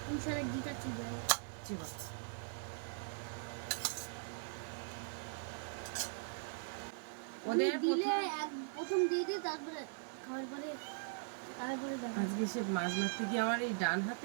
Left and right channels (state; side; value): silent; left; 51 dB below the other